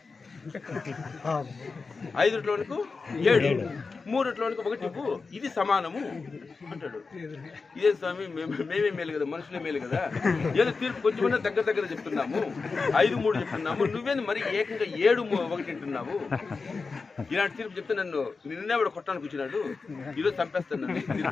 5 రొట్టెల వానికి 7, 3 రొట్టెల వానికి 1 ఇవ్వు, ఇది సమానము అంటాడు. ఇదే స్వామి, మేమే మేలు కదా, మనుషులే మేలు కదా, ఏదో తీర్పు కొంచెమన్నా దగ్గర చెప్తున్నాము, 5, 3 చెప్తున్నాము, నువ్వేంది మరి ఏకంగా 7, 1 అంటున్నావు. ఇలాంటి తీర్పు చెప్తే నిన్నే వాడు కొట్టడానికి వచ్చినాడు, ఈరోజు చంపేస్తాను నన్ను.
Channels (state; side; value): quieter; right; 4.4 dB